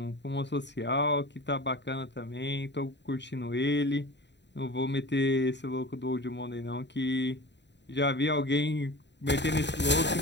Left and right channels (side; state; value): right; late; 0.51 ms